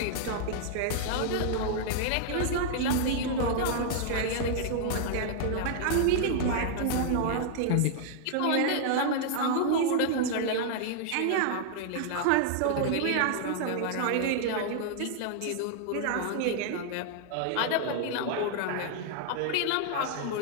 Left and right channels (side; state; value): both; different; correlation -0.01